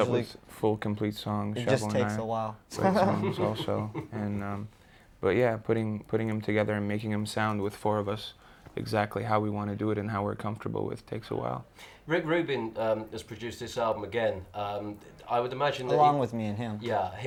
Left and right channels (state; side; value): identical; both; correlation 1.00